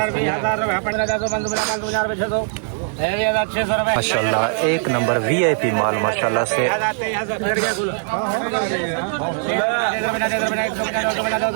माशाल्लाह एक नंबर VIP माल माशाल्लाह से।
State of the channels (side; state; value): left; silent; 60 dB below the other